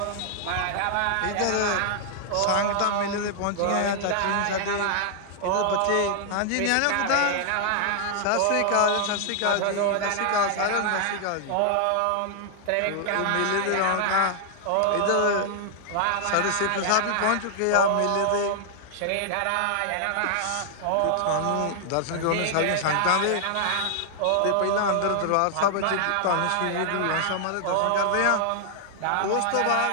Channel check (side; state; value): both; different; correlation 0.00